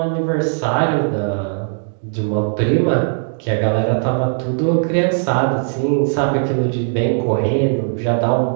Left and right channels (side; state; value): left; silent; digital silence